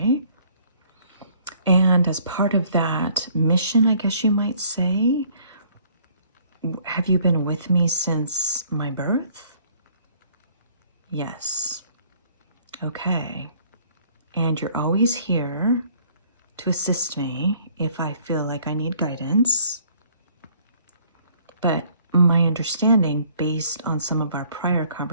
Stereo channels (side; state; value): both; inverted; correlation -0.59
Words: And as part of that mission, I guess you might say, have you been with me since my birth? Yes. Okay. And you're always here to assist me if I feel like I need guidance. But my understanding, based on some of our prior